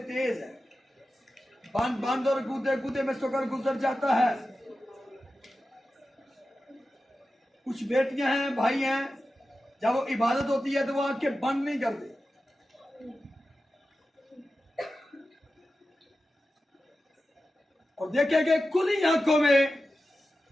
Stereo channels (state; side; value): normal; both; correlation 0.93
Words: है, बांध और कूदे कूदे में सोकर गुजर जाता है। कुछ बेटियां हैं, भाई हैं, जब वो इबादत होती है तो वो आंखें बंद नहीं करते। और देखेंगे खुली आंखों में